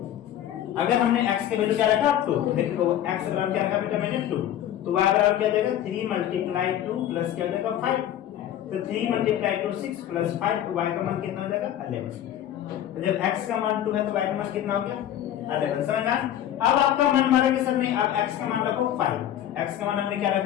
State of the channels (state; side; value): quieter; right; 11.4 dB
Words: अगर हमने x के वैल्यू क्या रखा? 2, देखो x बराबर क्या रखा बेटा मैंने? 2। तो y बराबर क्या हो जाएगा? 3 × 2 प्लस क्या हो जाएगा? 5। तो 3 × 2 6 प्लस 5, तो y का मान कितना हो जाएगा? 11। तो जब x का मान 2 है तो y का मान कितना हो गया? 11। समझना? अब आपका मन मारा कि सर नहीं, अब x का मान रखो 5। x का मान हमने क्या रख